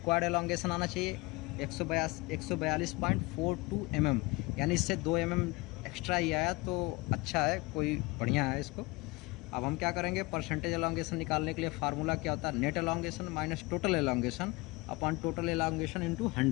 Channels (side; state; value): right; quieter; 24.1 dB